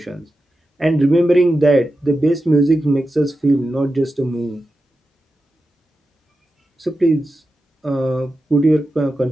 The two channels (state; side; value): normal; both; correlation 0.91